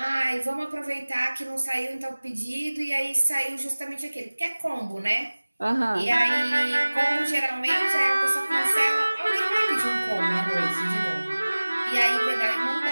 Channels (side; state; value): both; inverted; correlation -1.00